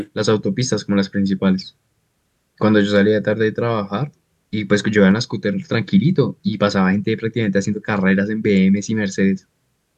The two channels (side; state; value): both; identical; correlation 1.00